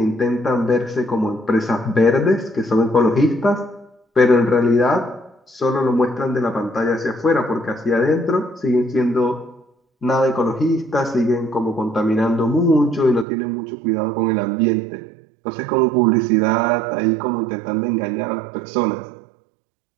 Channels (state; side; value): drops out; left; at 13.2 s